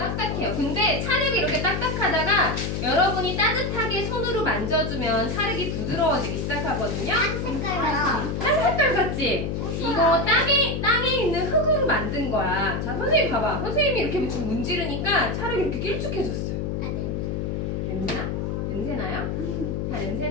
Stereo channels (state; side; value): noise; left; hum, 2 dB below the sound